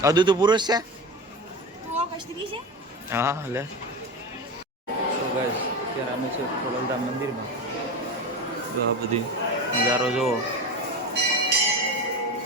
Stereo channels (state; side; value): normal; both; correlation 0.24